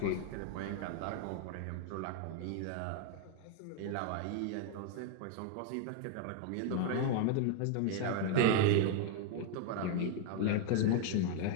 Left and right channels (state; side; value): different; both; correlation 0.00